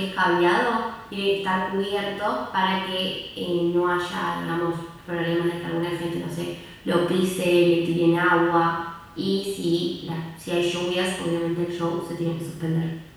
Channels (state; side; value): identical; both; correlation 1.00